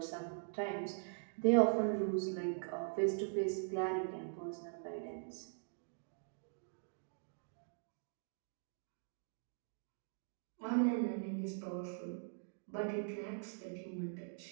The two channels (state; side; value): silent; left; digital silence